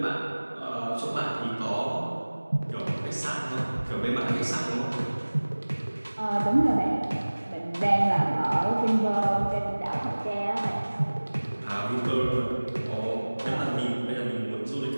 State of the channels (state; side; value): inverted; both; correlation -1.00